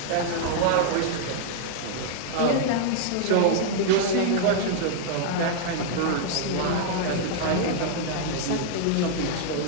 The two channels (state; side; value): different; both; correlation -0.01